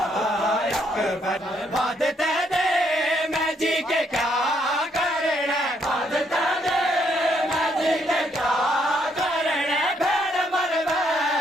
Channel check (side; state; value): both; normal; correlation 0.72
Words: अकबर बाद तेरे मैं जी के क्या करना बाद तेरे मैं जी के क्या करना भेड़ मर